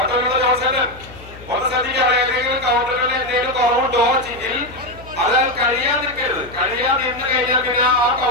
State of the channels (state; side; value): noise; left; hum, 18 dB below the sound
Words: ജോൺസേട്ടൻ ഒന്ന് ശ്രദ്ധിക്കുക. ഏതെങ്കിലും കൗണ്ടറുകളിൽ എന്തെങ്കിലും കുറവുണ്ടോ എങ്കിൽ അത് കഴിയാൻ നിൽക്കരുത്. കഴിയാൻ നിന്ന് കഴിഞ്ഞാൽ പിന്നെ ആ